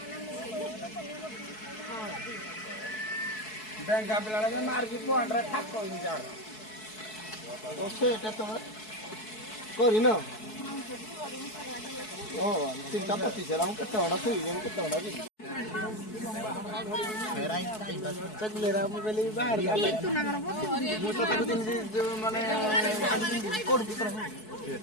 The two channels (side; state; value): right; late; 4.6 ms